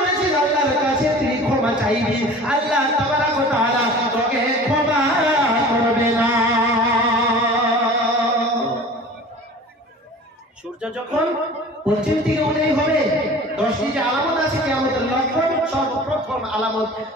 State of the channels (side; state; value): both; normal; correlation 0.41